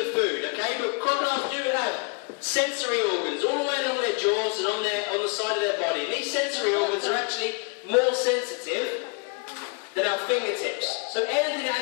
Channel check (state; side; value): quieter; right; 31.7 dB